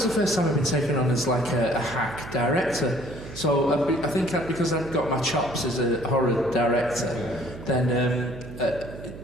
the first time I've been taken on as like a hack director. So I think because I'd got my chops as a horror director, then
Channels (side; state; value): right; noise; hum, 13 dB below the sound